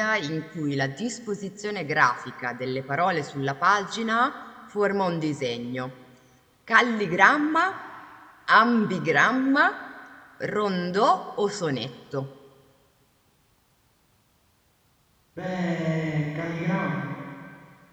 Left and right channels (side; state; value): both; identical; correlation 1.00